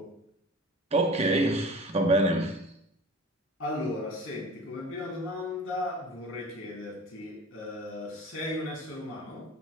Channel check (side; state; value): both; normal; correlation 0.40